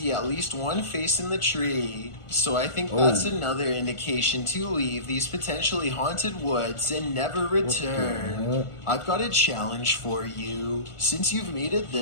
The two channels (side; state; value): right; late; 1.4 ms